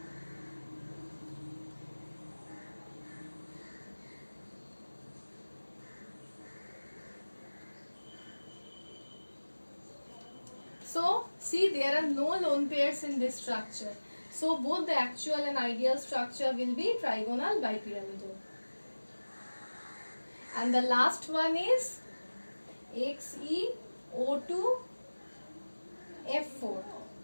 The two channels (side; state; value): both; inverted; correlation -1.00